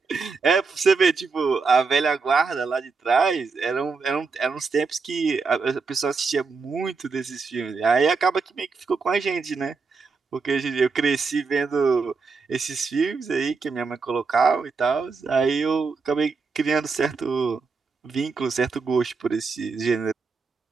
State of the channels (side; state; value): left; quieter; 4.6 dB